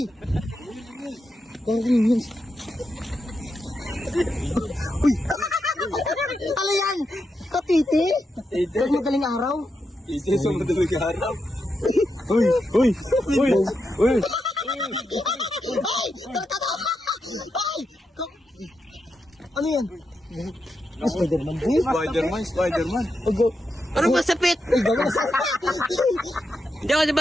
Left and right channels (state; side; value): normal; both; correlation 0.85